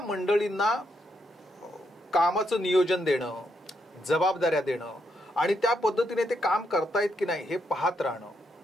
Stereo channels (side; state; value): both; normal; correlation 0.79